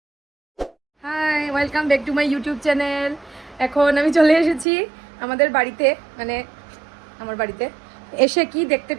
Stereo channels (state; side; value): drops out; left; at 4.7 s